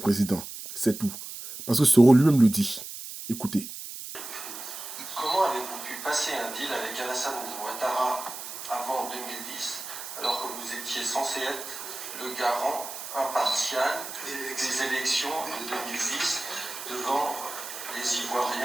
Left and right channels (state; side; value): noise; right; hiss, 9 dB below the sound